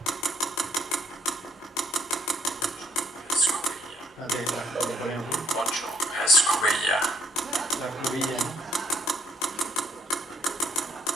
Lo ponemos. 8 escobilla. La escobilla, ¿no?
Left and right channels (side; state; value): both; normal; correlation 0.70